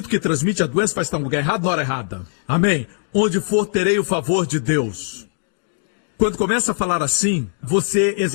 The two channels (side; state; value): right; silent; digital silence